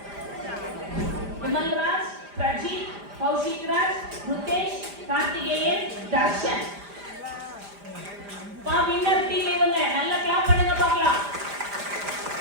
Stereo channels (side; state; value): left; late; 5.0 ms